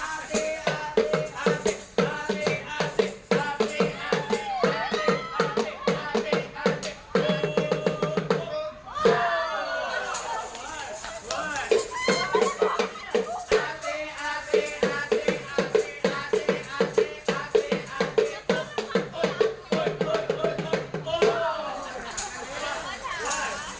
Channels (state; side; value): identical; both; correlation 1.00